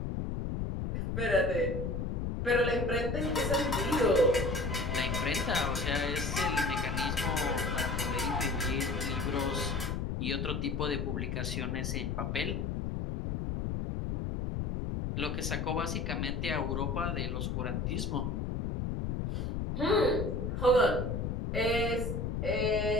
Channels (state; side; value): noise; left; rumble, 1 dB below the sound